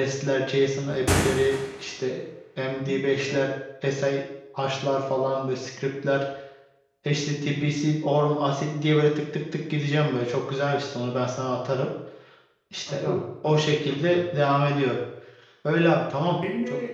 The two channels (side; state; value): both; identical; correlation 1.00